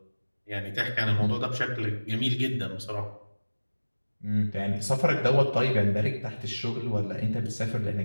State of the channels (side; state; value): both; inverted; correlation -1.00